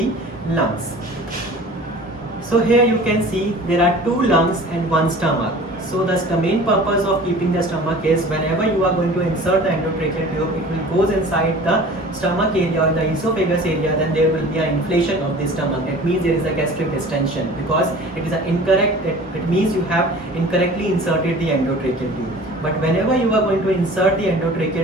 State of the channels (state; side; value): normal; both; correlation 0.43